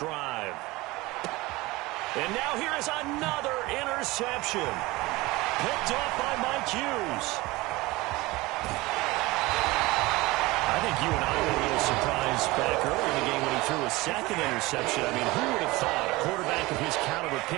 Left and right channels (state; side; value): quieter; left; 21.1 dB